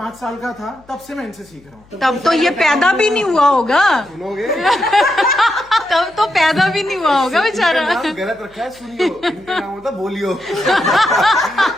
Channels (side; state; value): left; noise; hum, 29 dB below the sound